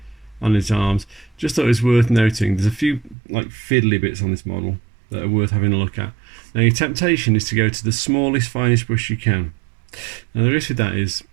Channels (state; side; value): drops out; left; at 3.2 s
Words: on his arms. Just thought it was worth noting there's a few like fiddly bits on this model that are worth having a look at. Now your temptation is to go to the smallest, finest brush you can. Now the risk with that is,